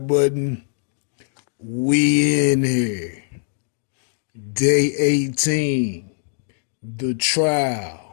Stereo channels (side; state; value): right; silent; 64 dB below the other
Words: button. We in here. Day 18. The